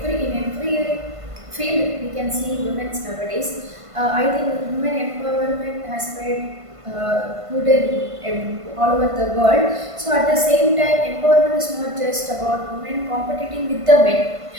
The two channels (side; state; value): left; late; 1.5 ms